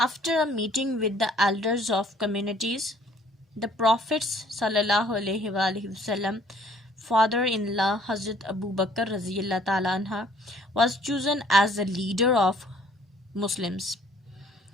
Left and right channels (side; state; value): both; normal; correlation 0.59